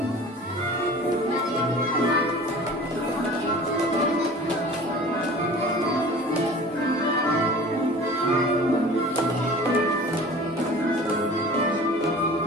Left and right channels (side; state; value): both; normal; correlation 0.42